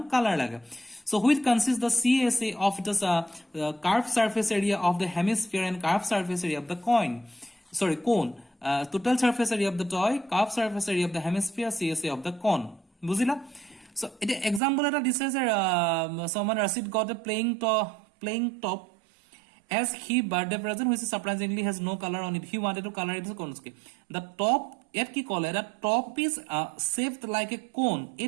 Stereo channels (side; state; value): left; drops out; at 14.6 s